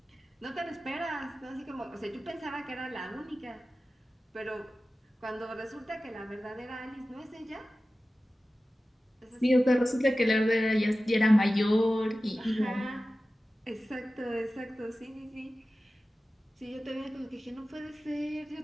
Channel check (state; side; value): normal; both; correlation 0.95